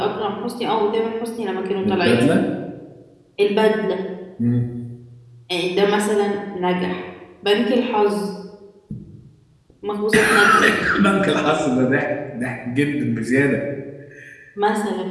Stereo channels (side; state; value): both; identical; correlation 1.00